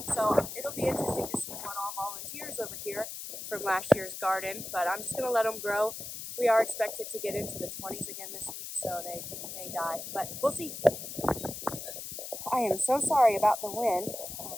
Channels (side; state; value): left; noise; hiss, 8 dB below the sound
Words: so it'll be interesting to see what all volunteers over here from last year's garden, but I'm just going to let them grow. We are expected to get into the 20s again this week, so they may die, but we'll see. I am so sorry about the wind,